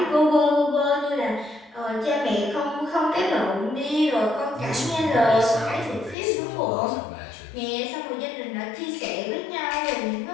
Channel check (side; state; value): right; drops out; at 6.2 s